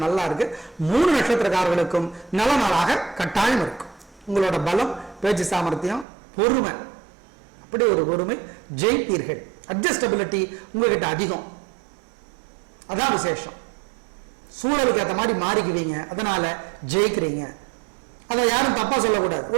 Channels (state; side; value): drops out; left; at 6.1 s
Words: நல்லா இருக்கு. 3 நட்சத்திரக்காரர்களுக்கும் நல்ல நாளாக கட்டாயம் இருக்கும். உங்களோட பலம், பேச்சு சாமர்த்தியம், பொறுமை, அப்படி ஒரு பொறுமை, ஜெயிப்பீர்கள். அட்ஜஸ்டபிலிட்டி உங்ககிட்ட அதிகம், அதான் விசேஷம். சூழலுக்கு ஏற்ற மாதிரி மாறிக்குவீங்க, அதனால ஜெயிக்கிறீங்க. அதை யாரும் தப்பா சொல்லக்கூடாது.